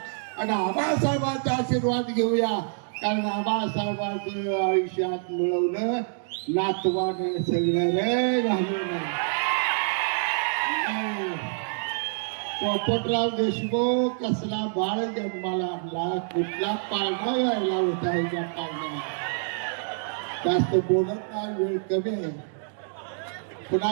आणि आबासाहेबांचा आशीर्वाद घेऊया. कारण आबासाहेबांचं आयुष्यात मिळवलं नातवानं सगळं रे घालून. पोपटराव देशमुख कसला बाळ जन्माला आणला, कुठला पाळणा व्हायला होता ह्याच्या पाळणा. जास्त बोलत नाही, वेळ कमी आहे. पुन्हा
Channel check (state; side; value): silent; left; 60 dB below the other